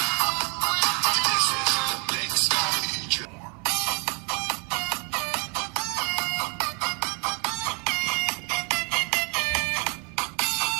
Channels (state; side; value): quieter; left; 34.9 dB